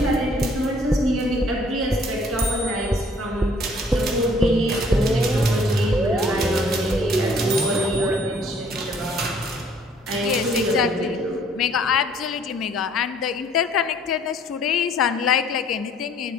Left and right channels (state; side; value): normal; both; correlation 0.59